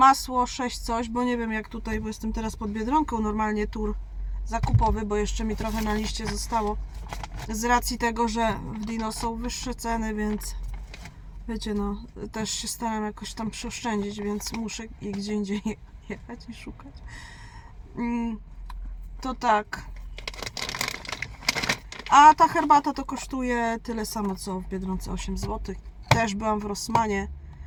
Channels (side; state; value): both; identical; correlation 1.00